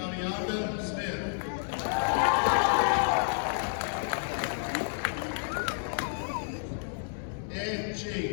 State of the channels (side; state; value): right; silent; digital silence